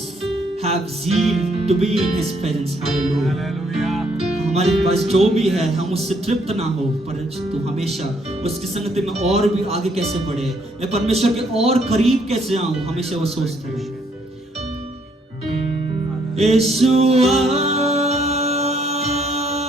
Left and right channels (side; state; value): both; normal; correlation 0.69